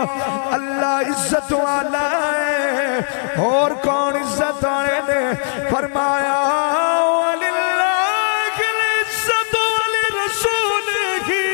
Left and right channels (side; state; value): right; silent; 67 dB below the other